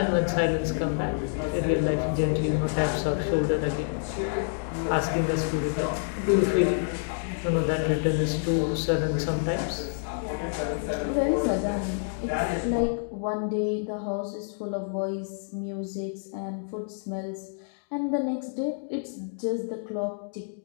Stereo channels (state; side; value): silent; right; digital silence